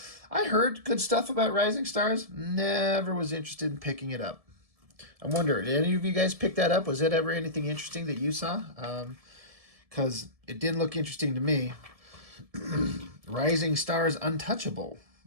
I heard good stuff about Rising Stars. Never was interested in picking it up. I wonder, did any of you guys pick that up? Was it ever anything interesting that you saw? Because it didn't look interesting to me. Rising Stars Untouchable.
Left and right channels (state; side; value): late; left; 1.7 ms